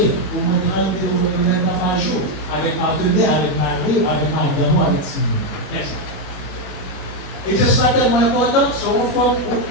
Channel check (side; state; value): right; late; 21 ms